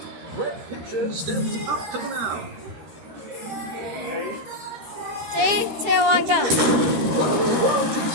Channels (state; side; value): late; left; 13 ms